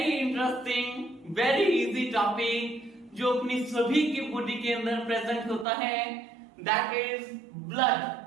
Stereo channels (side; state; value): left; drops out; at 5.7 s